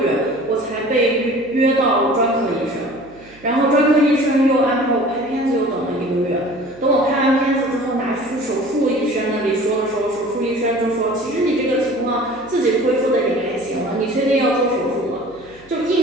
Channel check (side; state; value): right; noise; hum, 27 dB below the sound